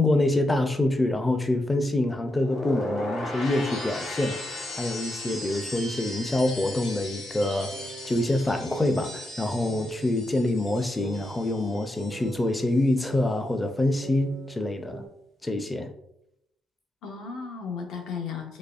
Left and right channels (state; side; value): normal; both; correlation 0.85